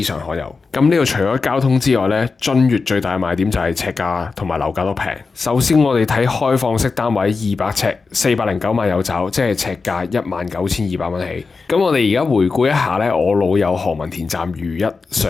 常可有。咁呢度除咗交通之外咧，君悅最大嘅賣點就係尺價同埋樓價都平。首先我哋睇開放式單位200尺，409萬有找，即係尺價19,200蚊起。咁我哋而家回顧一下咧，我老友何文田站如一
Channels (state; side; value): quieter; right; 4.4 dB